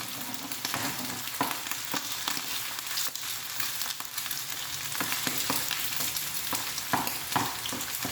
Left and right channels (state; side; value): identical; both; correlation 1.00